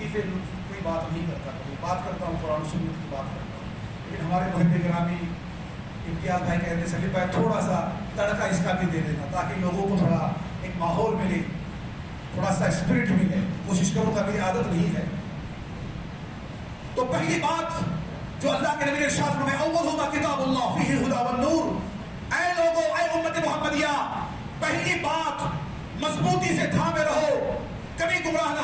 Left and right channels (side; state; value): both; identical; correlation 1.00